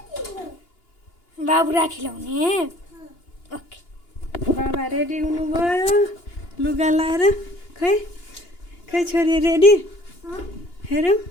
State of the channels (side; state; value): right; late; 2.9 ms